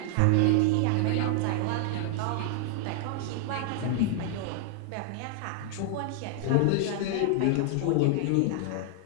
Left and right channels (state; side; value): different; both; correlation -0.01